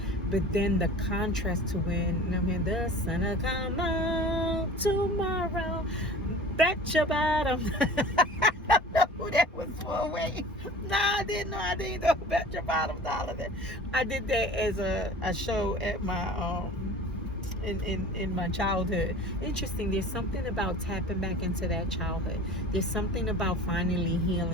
But then the contrast to when, I mean, the sun will come out tomorrow. Bet your bottom. I don't know who that was for. Wait. No, I didn't know. I didn't know Bet Your Bottom Dollar. I did that as a show at my in my childhood. Interesting. There's something about tapping back into that childhood. There's something about finally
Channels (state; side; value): normal; both; correlation 0.41